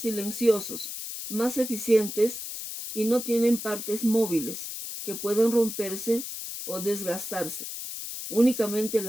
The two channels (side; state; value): left; noise; hiss, 7 dB below the sound